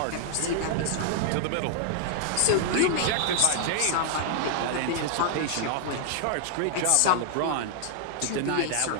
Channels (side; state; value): both; different; correlation 0.00